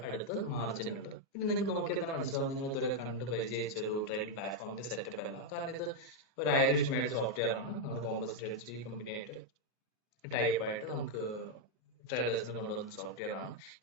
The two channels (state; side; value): normal; both; correlation 0.00